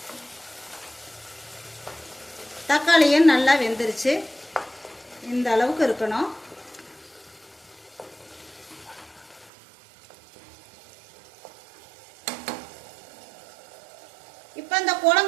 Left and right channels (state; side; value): drops out; left; at 9.5 s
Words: தக்காளியும் நல்லா வெந்துருச்சு. இந்த அளவுக்கு இருக்கணும். இப்போ இந்த